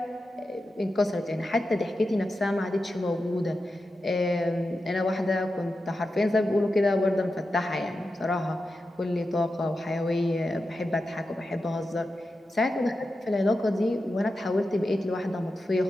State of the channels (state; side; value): normal; both; correlation 0.90